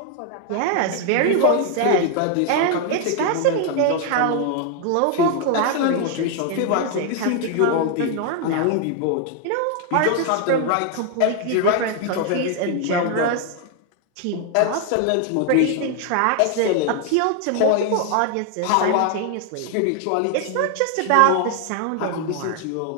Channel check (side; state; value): both; different; correlation 0.00